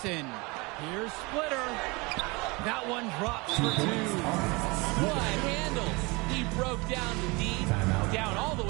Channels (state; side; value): quieter; left; 26.4 dB